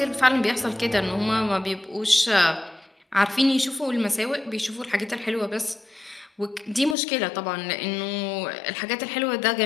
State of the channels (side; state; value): right; drops out; at 7.0 s